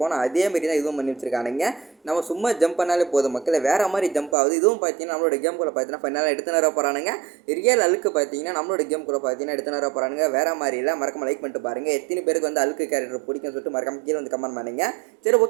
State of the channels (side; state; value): left; drops out; at 4.4 s